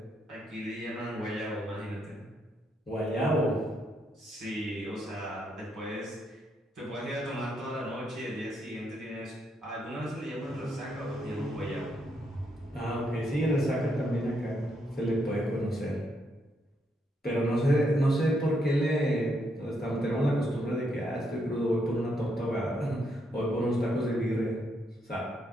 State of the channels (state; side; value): normal; both; correlation 0.77